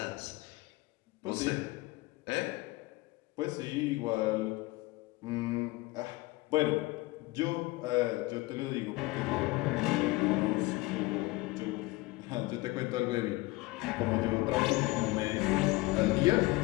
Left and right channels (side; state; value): right; quieter; 21.4 dB